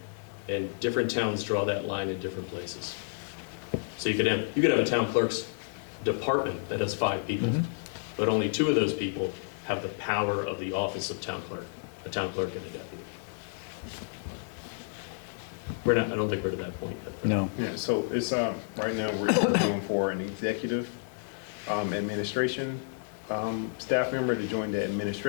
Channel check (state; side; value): silent; right; digital silence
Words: And different towns draw that line in different places. So you could have a town clerk's department that has 5 people, but only 2 of those people have the power of the office of town clerk, a town clerk and a deputy. I don't think we're to that point yet. No. Yeah, so it's, right now, we're going for an executive administration staff member to join the